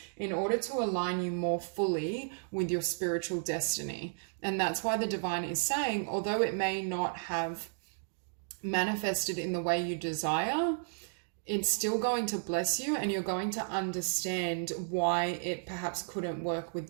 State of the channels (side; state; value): left; silent; digital silence